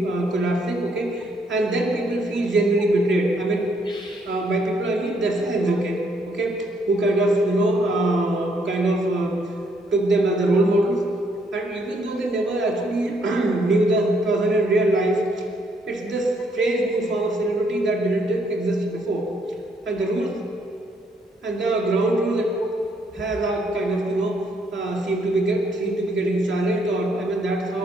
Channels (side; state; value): both; normal; correlation 0.70